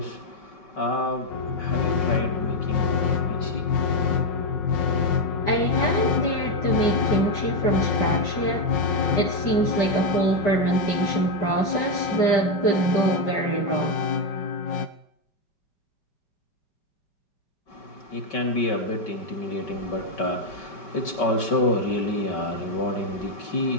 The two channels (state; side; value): late; right; 5.0 ms